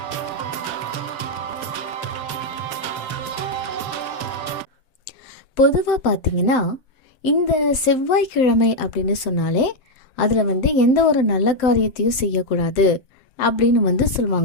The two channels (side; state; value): right; late; 7.7 ms